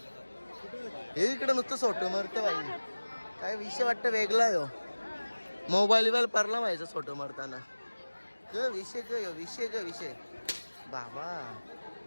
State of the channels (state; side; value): inverted; both; correlation -1.00